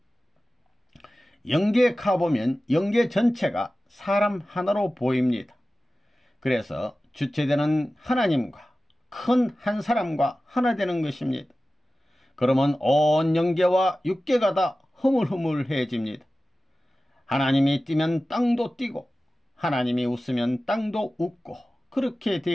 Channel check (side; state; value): both; normal; correlation 0.95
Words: 영계에 가보면 영계 전체가 사람 하나로 보입니다. 그래서 주체되는 하나님과 큰 한 사람과 하나 되는 것입니다. 그러면 온 영계와 육계가 다 흐물흐물해집니다. 하나님이 뛰면 땅도 뛰고 하나님이 웃으면 땅도 웃고 그렇게